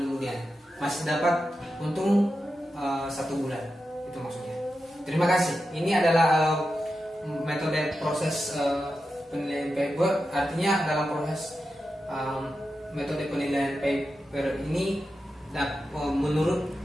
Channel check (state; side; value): normal; both; correlation 0.90